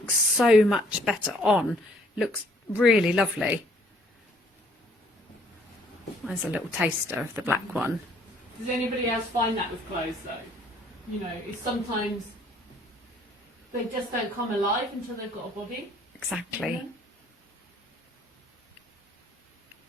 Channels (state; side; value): normal; both; correlation 0.61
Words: so much better on. Looks really lovely. There's a little taster of the black one. Does anybody else find that with clothes though? You know, it's sometimes they just don't come alive until they've got a body. Exactly.